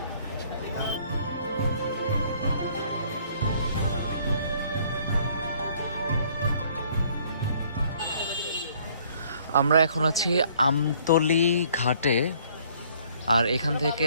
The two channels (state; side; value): inverted; both; correlation -0.61